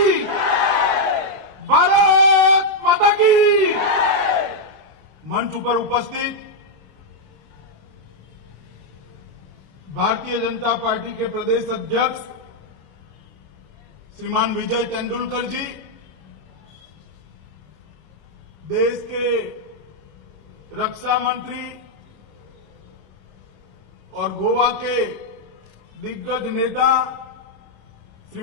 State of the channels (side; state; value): left; late; 26 ms